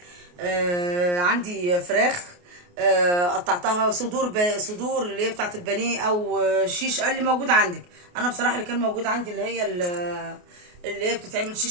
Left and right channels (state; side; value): late; left; 28 ms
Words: عندي فراخ، قطعتها صدور اللي هي بتاعت البانيه او شيش اللي موجود عندك. انا بصراحه اللي كان موجود عندي اللي هي اللي هي بتتعمل